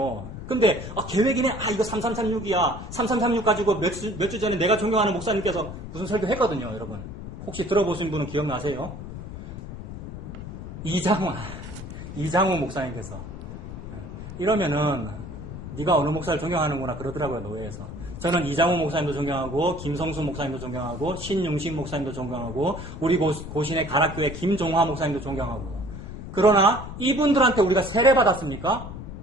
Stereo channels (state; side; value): noise; left; rumble, 10 dB below the sound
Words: 근데 계획이네. 이거 3336이야. 3336 가지고 몇 주 전에 내가 존경하는 목사님께서 무슨 설교 했거든요, 여러분. 혹시 들어보신 분은 기억나세요? 이장호 목사님께서. 이러면은 네가 어느 목사를 존경하는구나 그러더라고요, 노예에서. 저는 이장호 목사님도 존경하고 김성수 목사님도 존경하고 신용식 목사님도 존경하고 우리 고신의 가락교회 김종화 목사님도 존경하고. 그러나 이분들한테 우리가 세례 받았습니까?